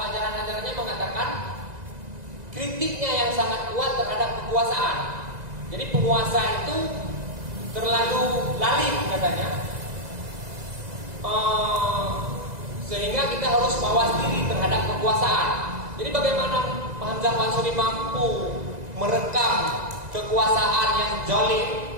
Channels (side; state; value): left; late; 2.0 ms